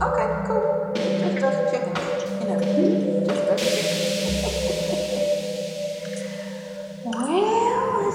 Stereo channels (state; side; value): identical; both; correlation 1.00